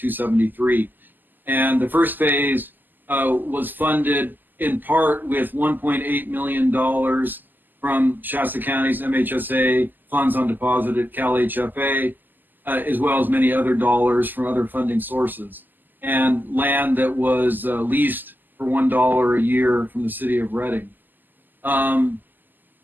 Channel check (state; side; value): late; left; 0.088 ms